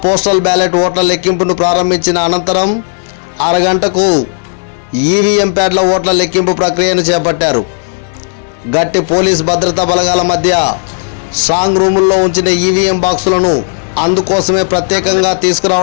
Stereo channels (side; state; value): right; silent; 72 dB below the other